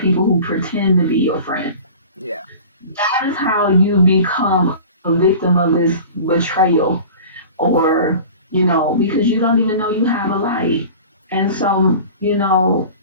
who pretend to be your friend. Yeah. That is how you become a victim of this betrayal or, because you don't even know you have a light. And so,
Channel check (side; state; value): both; inverted; correlation -0.39